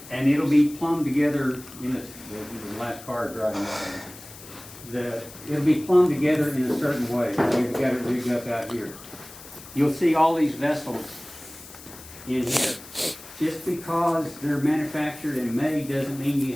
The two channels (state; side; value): noise; left; hiss, 17 dB below the sound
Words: and it'll be plumbed together in the last car driving. It'll be plumbed together in a certain way. We've got it rigged up out here. You'll see all these vessels in here. Just because they're manufactured and made doesn't mean you